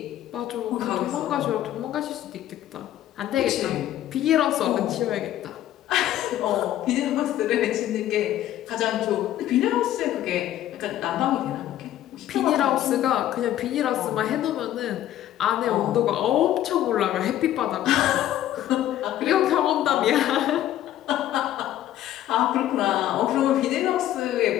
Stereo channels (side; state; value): right; quieter; 12.7 dB